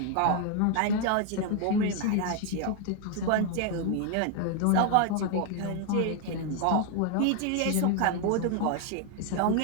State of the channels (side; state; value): both; different; correlation 0.00